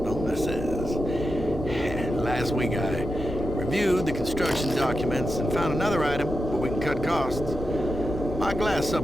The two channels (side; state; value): left; noise; hum, 14 dB below the sound